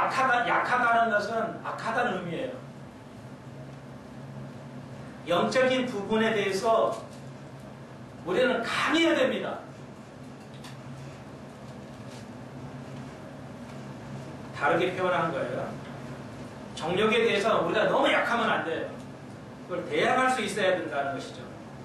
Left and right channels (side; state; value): both; identical; correlation 1.00